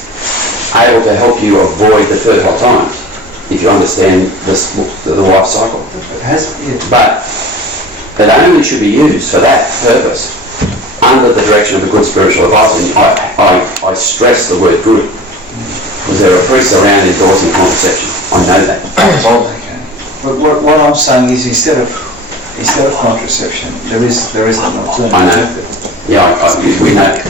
able to help you avoid the fertile times if you understand the life cycle. But it only should be used for that purpose under the direction of a good spiritual advisor. And I stress the word good because there are priests around endorsing contraception. I know that. But what I'm saying is instead of contraception, there is an alternative. I know. Yeah, we know.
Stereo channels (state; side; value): normal; both; correlation 0.39